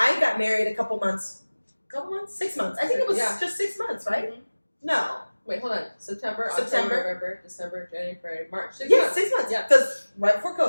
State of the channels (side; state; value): both; inverted; correlation -1.00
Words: got married a couple months, 6 months. I think it was just 6 months, right? Mm-hmm. No. Wait, hold on. September, October, November, December, January, February, March. 6 months. 6 months. Yeah. Because right before